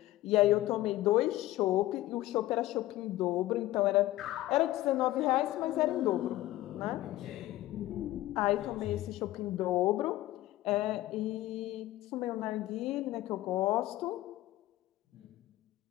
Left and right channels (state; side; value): quieter; right; 16.0 dB